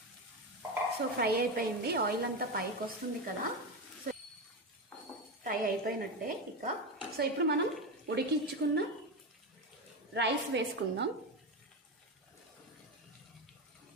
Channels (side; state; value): both; normal; correlation 0.15